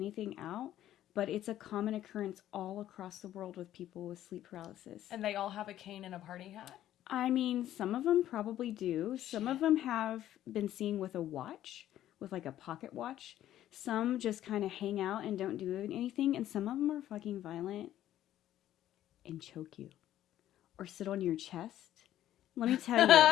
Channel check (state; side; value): quieter; right; 12.5 dB